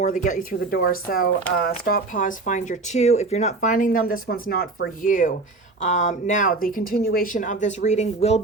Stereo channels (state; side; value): quieter; left; 3.5 dB